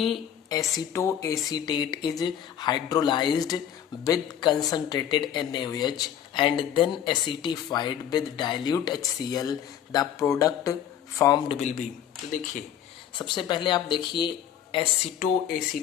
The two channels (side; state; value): right; quieter; 9.8 dB